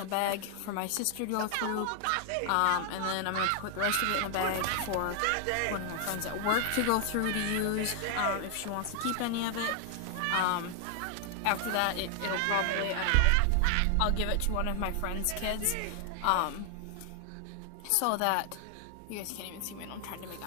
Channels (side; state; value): both; different; correlation 0.00